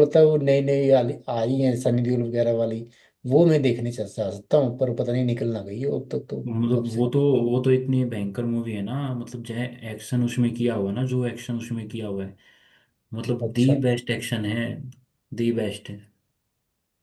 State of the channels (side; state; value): both; identical; correlation 1.00